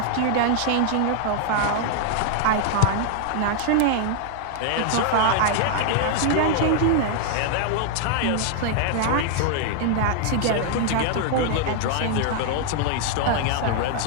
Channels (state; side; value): different; both; correlation 0.00